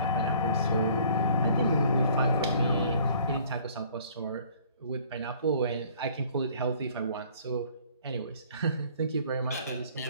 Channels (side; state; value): both; inverted; correlation -0.55